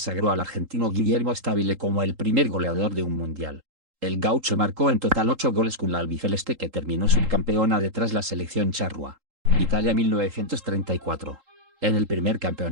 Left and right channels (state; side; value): late; left; 3.8 ms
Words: al argentino Guillermo Stabile como el primer goleador de un mundial. El gaucho marcó en total 8 goles con la albiceleste, que terminó subcampeona detrás la selección charrúa. Italia 1934. En el primer